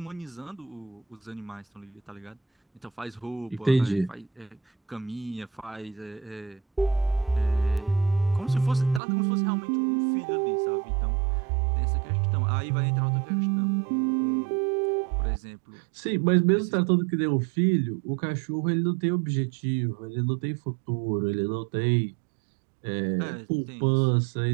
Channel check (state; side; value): drops out; left; at 9.0 s